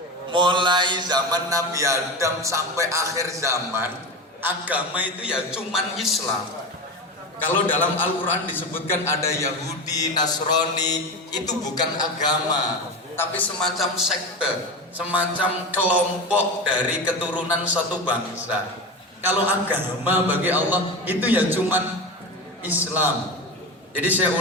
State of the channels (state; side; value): normal; both; correlation 0.24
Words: Mulai zaman Nabi Adam sampai akhir zaman, agama itu ya cuman Islam. Kalau dalam Al-Quran disebutkan ada Yahudi, Nasrani, itu bukan agama, tapi semacam sekte, semacam kelompok dari keturunan satu bangsa. Kalau agama bagi Allah itu ya cuman Islam. Jadi saya